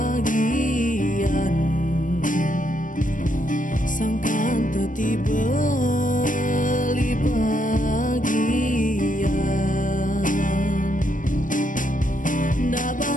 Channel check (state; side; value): late; right; 0.38 ms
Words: Sangkan tetiba li bagian. Ndak